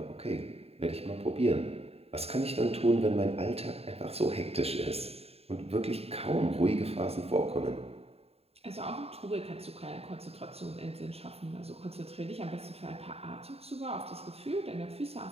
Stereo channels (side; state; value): left; late; 0.29 ms